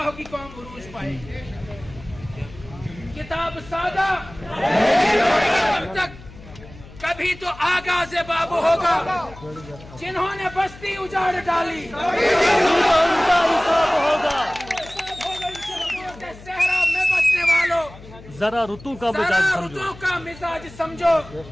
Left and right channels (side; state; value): left; noise; hum, 18 dB below the sound